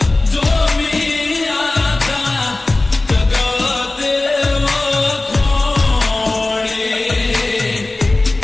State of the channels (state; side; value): quieter; right; 3.0 dB